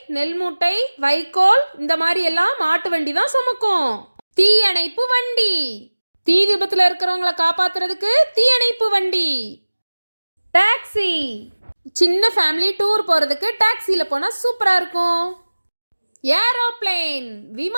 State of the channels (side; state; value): both; inverted; correlation -1.00